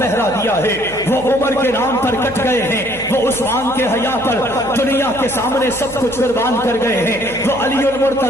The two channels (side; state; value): right; noise; hum, 18 dB below the sound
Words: دیا ہے. وہ عمر کے نام پر کٹ گئے ہیں. وہ عثمان کے حیا پر دنیا کے سامنے سب کچھ قربان کر گئے ہیں. وہ علی